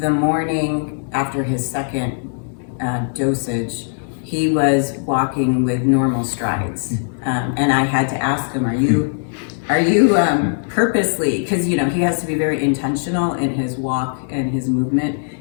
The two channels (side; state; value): right; silent; 66 dB below the other